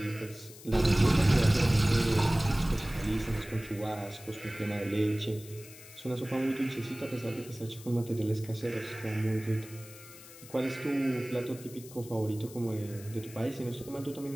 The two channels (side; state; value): left; noise; hiss, 18 dB below the sound